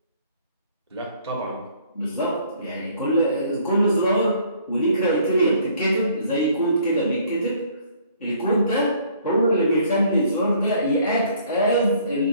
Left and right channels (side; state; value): both; inverted; correlation -0.60